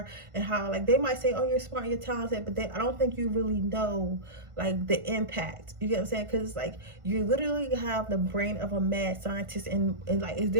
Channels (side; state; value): left; late; 1.5 ms